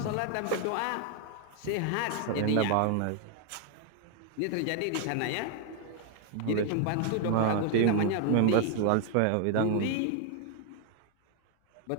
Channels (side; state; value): both; different; correlation 0.00